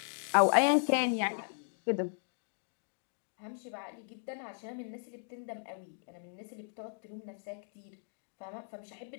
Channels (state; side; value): silent; right; digital silence